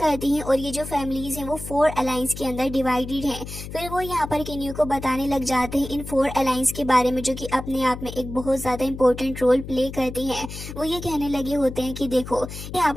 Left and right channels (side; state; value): left; noise; hum, 10 dB below the sound